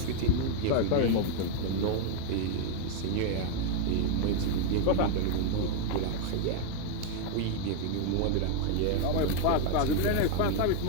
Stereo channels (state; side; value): different; both; correlation 0.00